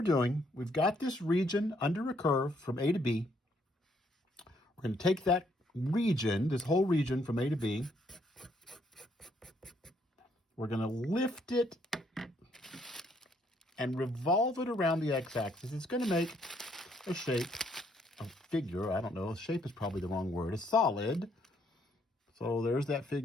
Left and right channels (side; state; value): both; normal; correlation 0.70